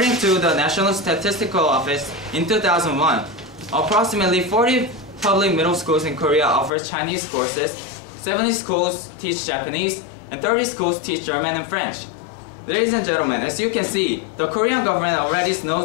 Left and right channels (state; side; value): drops out; right; at 6.7 s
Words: to the National Statistical Office, in 2001, approximately 40 public middle schools in Korea offer Chinese courses, 70 schools teach Japanese, and 30 schools teach German and French. Ladies and gentlemen, as you can see, the Korean government already